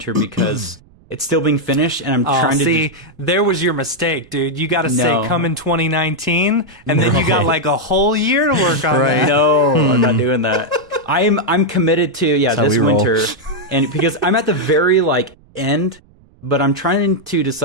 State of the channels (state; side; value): noise; right; rumble, 29 dB below the sound